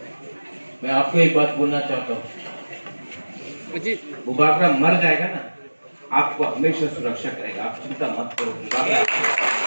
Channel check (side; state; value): both; inverted; correlation -1.00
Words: मैं आपको एक बात बोलना चाहता हूँ, वो बाकरा मर जाएगा ना, आपको हमेशा सुरक्षा करेगा, आप चिंता मत करो।